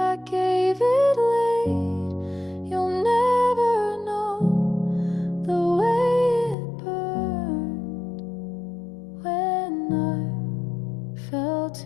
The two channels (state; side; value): drops out; right; at 6.6 s